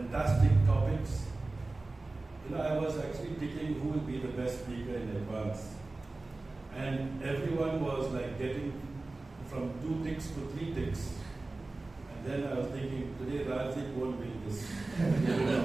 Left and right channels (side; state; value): left; quieter; 3.2 dB